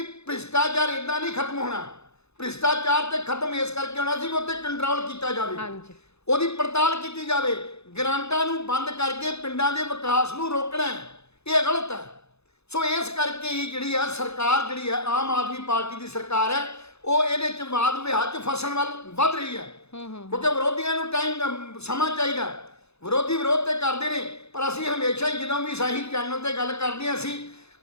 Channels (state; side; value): late; right; 0.79 ms